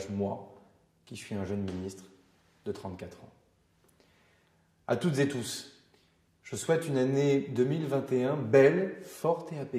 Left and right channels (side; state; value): both; identical; correlation 1.00